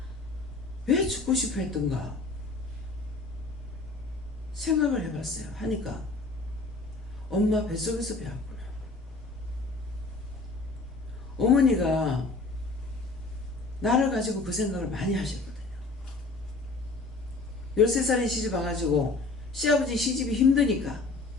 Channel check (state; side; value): quieter; right; 3.5 dB